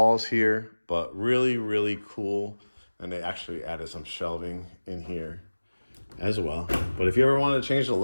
here, but really, really cool. And they actually added some shelving in here as well. But if you ever want to change the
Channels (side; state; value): both; inverted; correlation -1.00